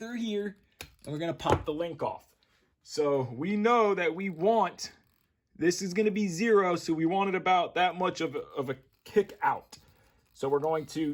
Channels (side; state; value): both; identical; correlation 1.00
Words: here, and we're going to pop the link off. So we know that we want, this is going to be 0, so we want it about that much of a kick out. So we're going to